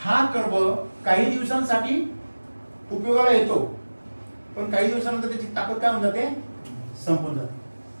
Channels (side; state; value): both; inverted; correlation -1.00